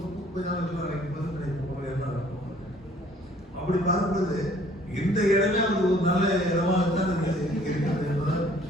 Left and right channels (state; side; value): normal; both; correlation 0.58